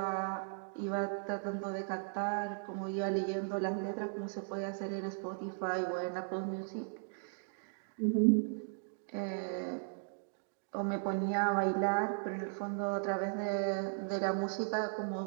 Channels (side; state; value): left; silent; digital silence